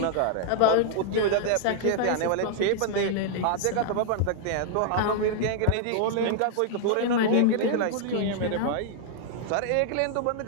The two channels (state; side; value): different; both; correlation -0.01